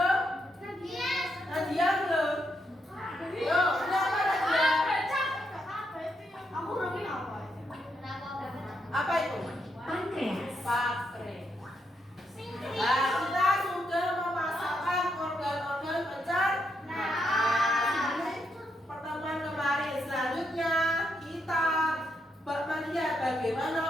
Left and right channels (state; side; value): normal; both; correlation 0.79